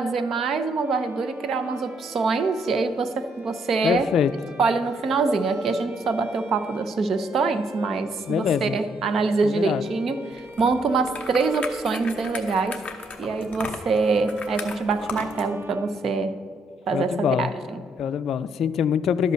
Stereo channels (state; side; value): normal; both; correlation 0.72